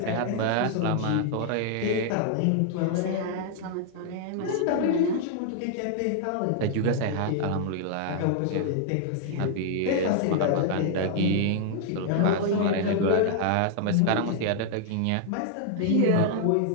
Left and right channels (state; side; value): different; both; correlation 0.00